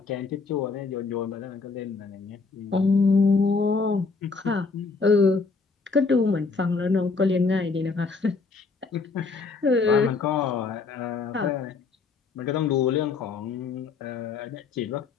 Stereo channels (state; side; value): quieter; right; 4.4 dB